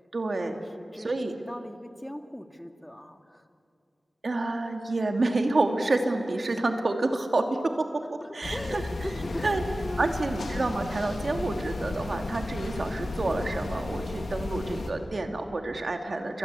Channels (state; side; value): normal; both; correlation 0.95